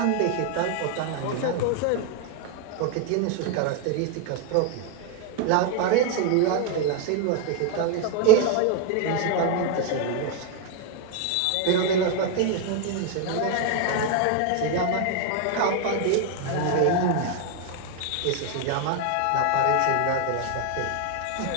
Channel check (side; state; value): both; different; correlation 0.01